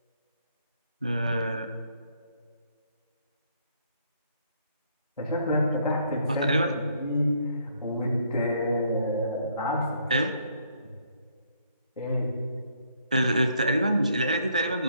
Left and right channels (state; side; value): inverted; both; correlation -0.68